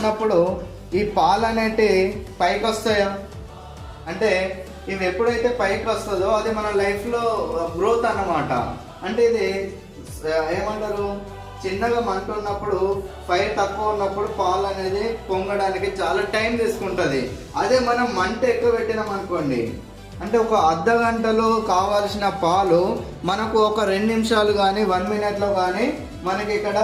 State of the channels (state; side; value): identical; both; correlation 1.00